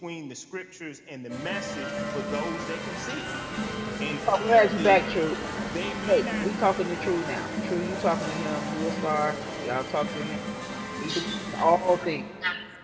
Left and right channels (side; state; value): both; identical; correlation 1.00